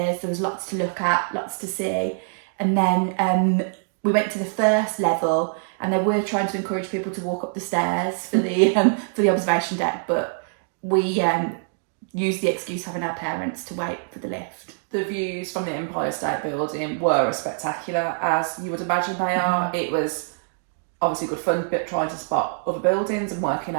there was lots to look at, lots to see. And then we went to the first level, and they were trying to encourage people to walk up the stairs for the observation deck, but we used the excuse of having our parents to wait for the lift. The views from the Empire State Building were as spectacular as you would imagine they are. It was obviously good fun, but trying to spot other buildings and working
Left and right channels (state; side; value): silent; left; digital silence